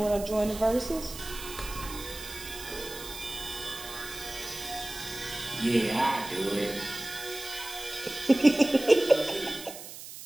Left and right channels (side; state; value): right; noise; hiss, 12 dB below the sound